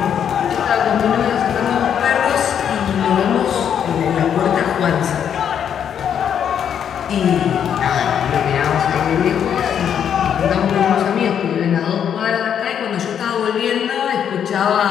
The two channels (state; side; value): quieter; right; 8.6 dB